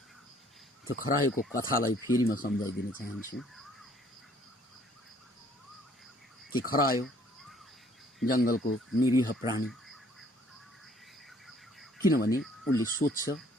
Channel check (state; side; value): normal; both; correlation 0.60